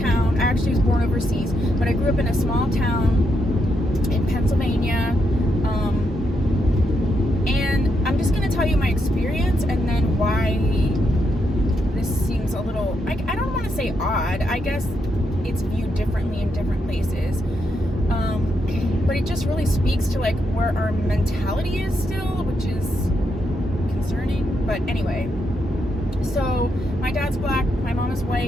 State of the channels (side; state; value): both; normal; correlation 0.81